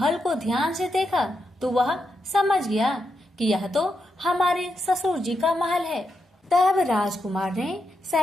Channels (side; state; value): both; normal; correlation 0.84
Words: को ध्यान से देखा तो वह समझ गया कि यह तो हमारे ससुर जी का महल है। तब राजकुमार ने